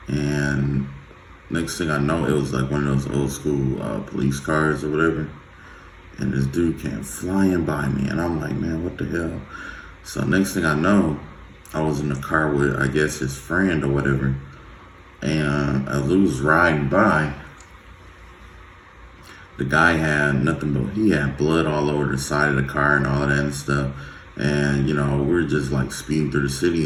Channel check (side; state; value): both; identical; correlation 1.00